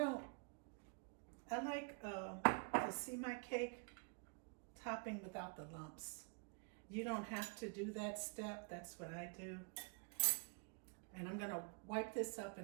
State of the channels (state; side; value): quieter; left; 36.5 dB